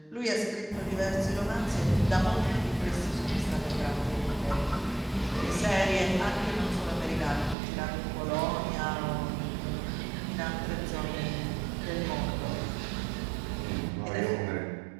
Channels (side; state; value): left; drops out; at 7.6 s